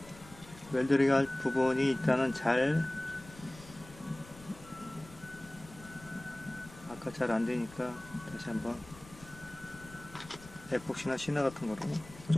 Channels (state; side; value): noise; left; rumble, 19 dB below the sound